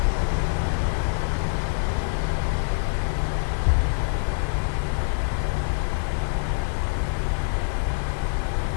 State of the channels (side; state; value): right; silent; digital silence